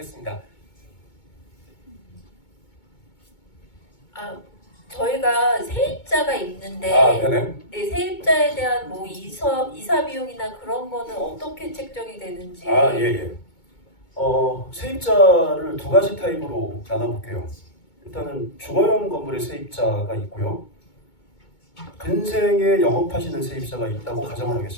저희가 세입자가 있는데 네네. 네, 세입자에 대한 뭐 이사 비용이나 그런 거는 어떻게 책정이 되는지. 예. 세입자를 2가지 타입으로 나눠볼게요. 일단은 주거용 건물의 세입자가 있고요. 근생에 영업하시는 세입자가 있다고 가정을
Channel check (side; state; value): right; late; 2.2 ms